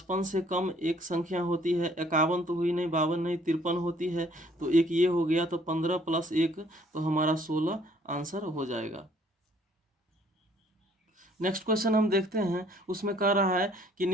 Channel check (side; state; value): both; normal; correlation 0.60